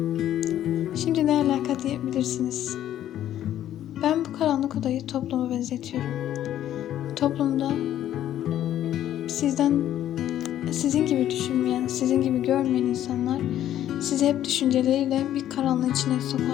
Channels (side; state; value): right; quieter; 11.8 dB